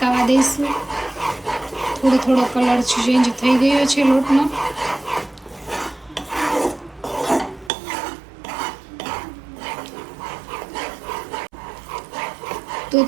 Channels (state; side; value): drops out; left; at 7.7 s